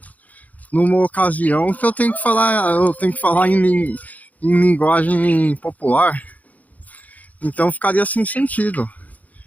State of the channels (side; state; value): right; late; 0.076 ms